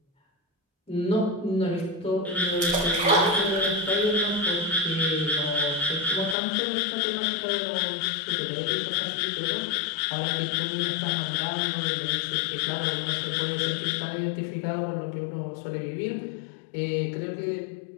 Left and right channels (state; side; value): drops out; right; at 6.4 s